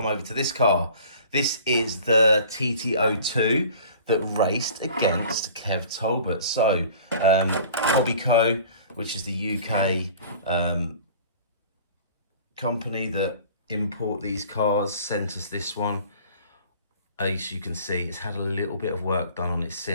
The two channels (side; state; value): both; inverted; correlation -0.46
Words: over to this car. This is the TT02 that raced against Kev Talbot. So Hobbyco, which is the UK company that import these cars, sent us this one. As you can see, it's had a little bit of work done on it